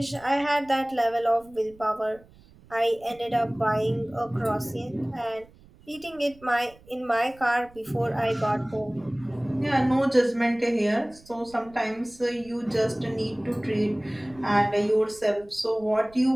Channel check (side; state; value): right; noise; rumble, 25 dB below the sound